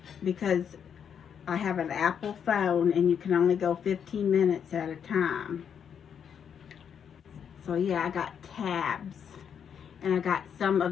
because I have an Apple phone and you can only go 15 minutes at a time. So yeah, I got tabs, and I got some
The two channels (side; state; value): right; quieter; 7.8 dB